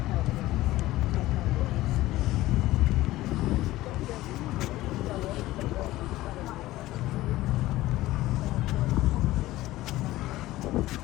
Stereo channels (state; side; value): quieter; right; 16.8 dB